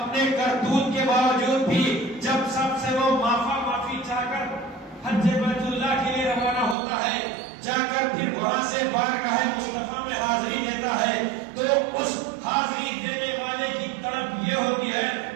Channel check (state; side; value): drops out; left; at 6.8 s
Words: کرتوت کے باوجود بھی جب سب سے وہ معافی چاہ کر حج بیت اللہ کے لیے روانہ ہوتا ہے، جا کر پھر وہاں سے بارگاہ مصطفیٰ میں حاضری دیتا ہے، تو اس حاضری دینے والے کی طرف یہ ہوتی ہے